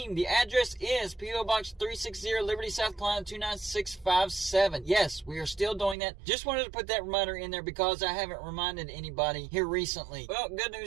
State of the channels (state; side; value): drops out; left; at 6.0 s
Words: The address is P.O. Box 360, Liberty, South Carolina 29657. Yes, we are still doing that. Just wanted to put that reminder in there because I haven't reminded anybody here recently. Well, good